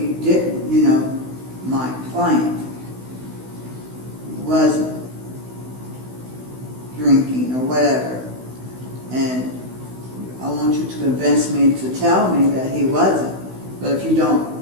didn't. My client wasn't drinking or whatever. And I want you to convince me to tell me that he wasn't. But if you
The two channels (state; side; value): late; left; 16 ms